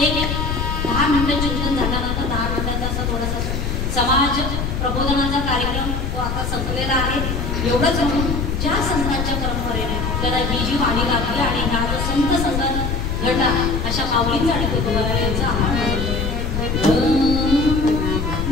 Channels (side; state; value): left; noise; rumble, 2 dB below the sound